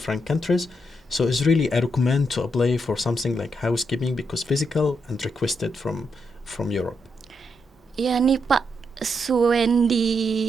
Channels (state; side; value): normal; both; correlation 0.81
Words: countries, so it's really I recommend to apply for something like housekeeping because physical and requested from Europe. Ya nih Pak